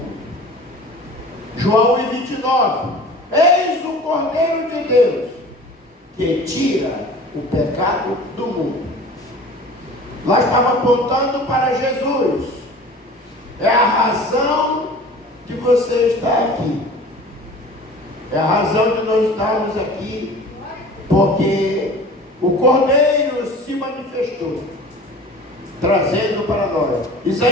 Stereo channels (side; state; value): both; normal; correlation 0.42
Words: João 1,29, eis o Cordeiro de Deus, que tira o pecado do mundo. Lá estava apontando para Jesus. É a razão de você estar aqui. É a razão de nós estarmos aqui, porque o Cordeiro se manifestou, trazendo para nós.